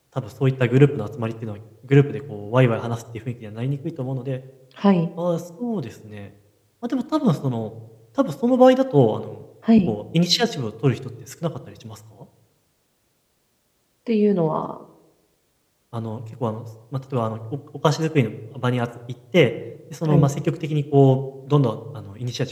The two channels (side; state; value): both; identical; correlation 1.00